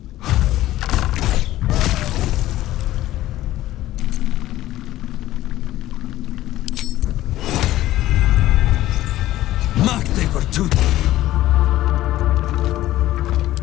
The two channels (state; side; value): quieter; right; 14.9 dB